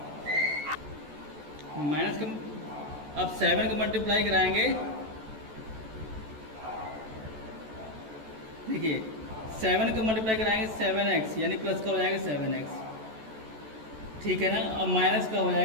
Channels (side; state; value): left; late; 14 ms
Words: माइनस का, अब 7 का मल्टीप्लाई कराएंगे, देखिए 7 का मल्टीप्लाई कराएंगे 7x, यानी प्लस का हो जाएगा 7x, ठीक है ना। अब माइनस का हो